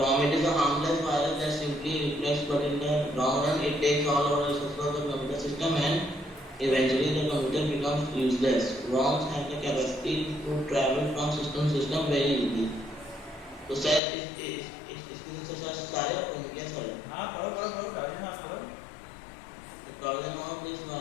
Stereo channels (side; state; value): right; drops out; at 14.0 s